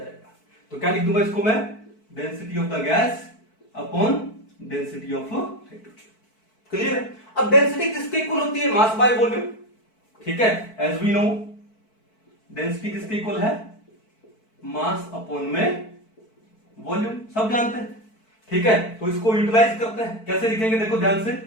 तो क्या लिख दूंगा इसको मैं, density of the gas upon density of hydrogen. Clear है। अब डेंसिटी किसके इक्वल होती है, मास बाय वॉल्यूम, ठीक है। एज वी नो डेंसिटी किसके इक्वल है, मास अपॉन में वॉल्यूम, सब जानते हैं, ठीक है। तो इसको यूटिलाइज करते हैं, कैसे लिखेंगे, देखो ध्यान से,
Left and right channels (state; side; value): late; right; 4.6 ms